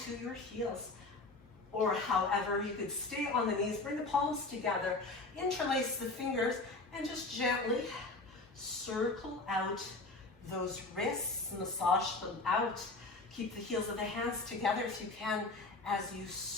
your heels. Or however, you could stay on the knees, bring the palms together, interlace the fingers, and just gently circle out those wrists, massage them out. Keep the heels of the hands together if you can as you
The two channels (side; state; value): right; quieter; 3.3 dB